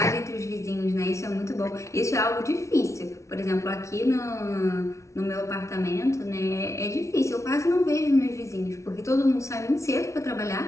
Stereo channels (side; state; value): right; late; 0.14 ms